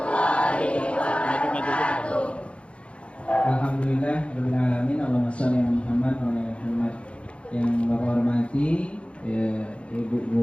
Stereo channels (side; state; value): right; late; 0.060 ms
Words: wabarakatuh. Alhamdulillah rabbil alamin. Allahumma shalli ala Muhammad wa ala Muhammad. Yang Bapak hormati Ibu